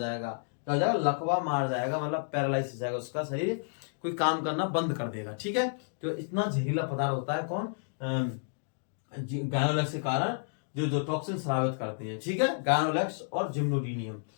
क्या हो जाएगा? लकवा मार जाएगा, मतलब पैरालाइज हो जाएगा, उसका शरीर कोई काम करना बंद कर देगा। ठीक है, तो इतना जहरीला पदार्थ होता है कौन? गायनोलेक्स के कारण जो टॉक्सिन स्रावित करते हैं। ठीक है, गायनोलेक्स और जिम्नोडीनियम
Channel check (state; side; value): silent; right; digital silence